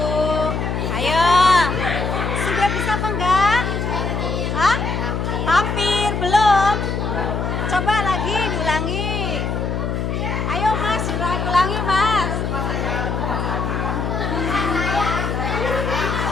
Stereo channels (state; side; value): noise; left; hum, 1 dB below the sound